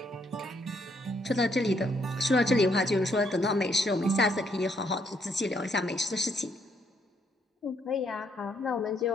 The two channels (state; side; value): normal; both; correlation 0.72